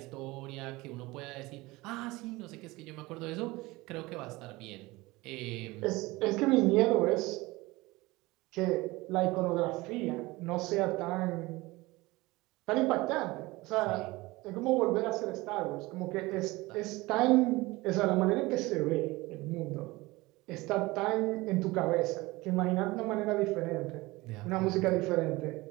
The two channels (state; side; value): quieter; left; 21.3 dB